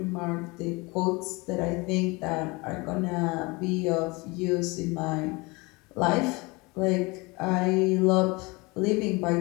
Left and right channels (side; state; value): right; quieter; 25.6 dB